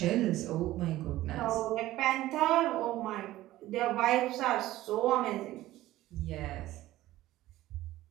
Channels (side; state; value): left; quieter; 15.7 dB